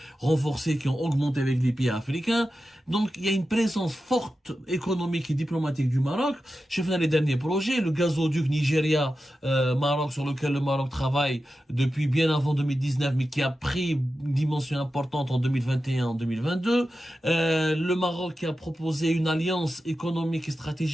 renforcés, qui ont augmenté avec les pays africains. Donc, il y a une présence forte économique et diplomatique du Maroc. Je fais les derniers projets, le gazoduc Nigeria-Maroc sur lequel le Maroc travaille depuis bien avant 2019, mais qui a pris une dimension importante en 2021, en 2022. Le Maroc qui a proposé une alliance économique et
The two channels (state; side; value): normal; both; correlation 0.92